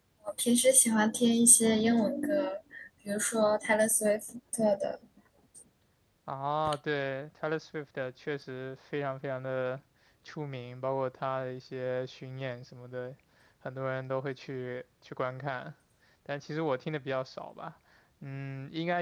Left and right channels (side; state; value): both; identical; correlation 1.00